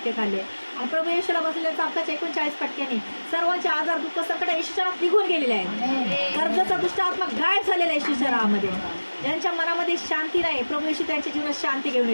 खाल्ले आणि प्रभू येशूला बसलेल्या चापकाच्या 39 फटक्याने सर्वांचे आजार, दुःख, संकट येशूच्या नावात निघून गेलेले आहेत. कर्जाचा दुष्ट आत्मा गायब झालेला आहे येशूच्या नावामध्ये. ज्यांच्या मनामध्ये शांती नाही, प्रभू येशू त्यांच्या जीवनात शांती घेऊन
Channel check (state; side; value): inverted; both; correlation -1.00